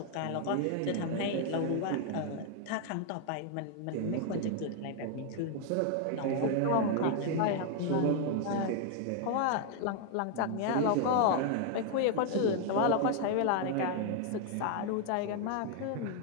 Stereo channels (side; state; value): both; different; correlation 0.00